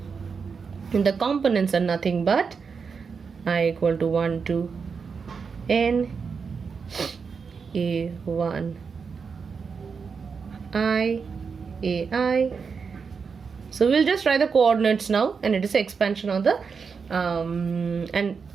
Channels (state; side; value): quieter; left; 5.6 dB